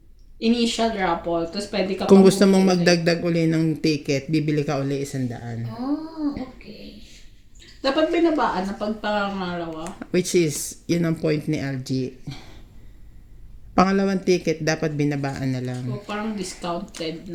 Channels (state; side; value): identical; both; correlation 1.00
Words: Initial raffle. Tapos pwede ka Kung pang gusto mong bumili. magdagdag uli ng ticket, bibili ka uli 100. Oh, okay. Dapat binabaan na pag pangalawa. Which is, yun ang point ni LG. Pangalawang ticket, dapat binabaan na lang. So, parang discounted